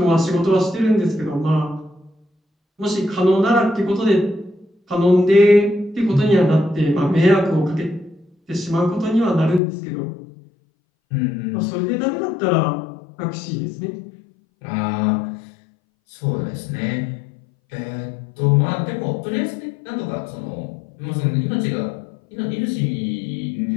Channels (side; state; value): right; drops out; at 9.6 s